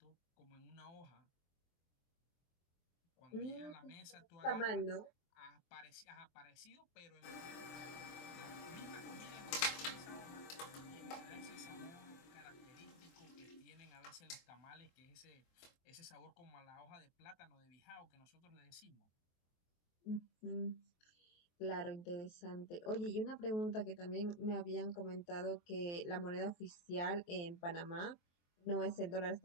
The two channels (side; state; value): right; late; 23 ms